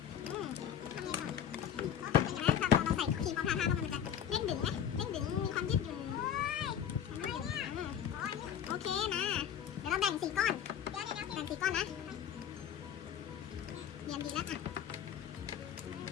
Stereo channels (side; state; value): right; quieter; 9.1 dB